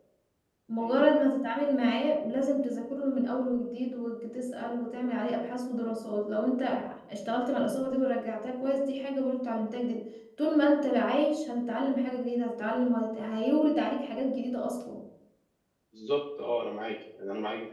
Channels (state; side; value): identical; both; correlation 1.00